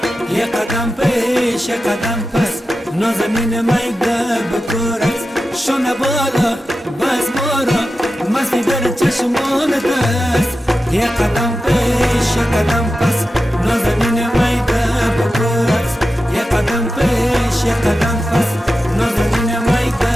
یه قدم پیش یه قدم پس نازنین میده بکورت شونه بالا بز مارا مستی در چشمان دست یه قدم پیش یه قدم پس نازنین میده بکورت یه قدم پیش یه قدم پس نازنین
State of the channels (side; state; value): both; normal; correlation 0.92